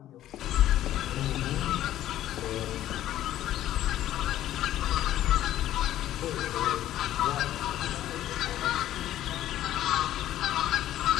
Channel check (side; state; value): right; quieter; 13.0 dB